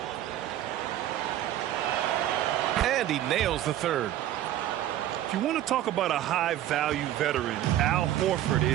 And he nails the third. If you want to talk about a high-value veteran, Al Horford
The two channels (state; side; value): quieter; left; 12.7 dB